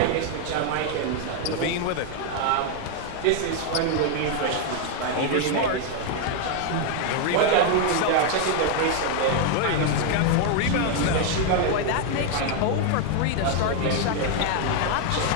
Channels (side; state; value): both; different; correlation 0.00